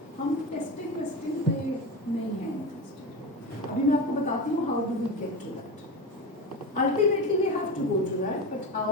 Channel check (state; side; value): normal; both; correlation 0.22